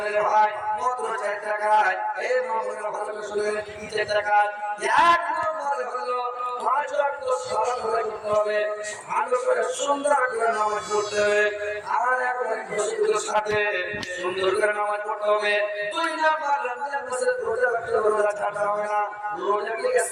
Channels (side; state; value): both; identical; correlation 1.00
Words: রে ভাই মাত্র 4 টাকায় এই মামলার ভালো করে শুনেন কি 4 টাকা এক নম্বরে হলো 5 ওয়াক্ত সালাত করতে হবে ভালো করে সুন্দর করে নামাজ পড়তে হবে আর একবারে খুশির সাথে সুন্দর করে নামাজ পড়তে হবে 2 নম্বর রমজান মাসের রোজা রাখতে হবে রোজা ছাড়তে হবে না রোজাকে